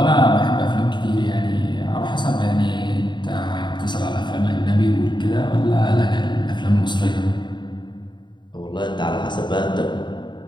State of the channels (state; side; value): late; right; 0.22 ms